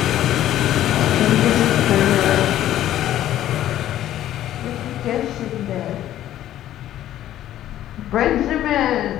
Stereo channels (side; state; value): right; quieter; 12.6 dB